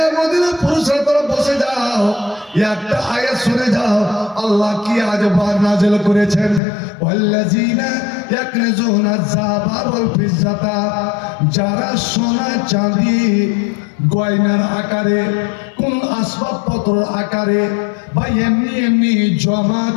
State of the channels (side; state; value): right; drops out; at 6.6 s